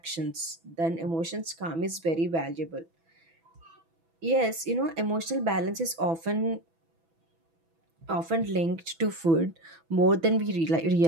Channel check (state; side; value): late; left; 6.1 ms